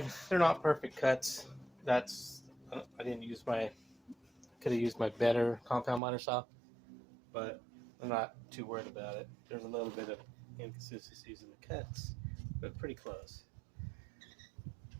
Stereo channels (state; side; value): drops out; left; at 6.0 s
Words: they're not perfect cuts. That's, I didn't use my, could have used my better compound miter saw, but I'm not too worried about it. There's a little bit of inconsistencies in the cuts, but pretty close.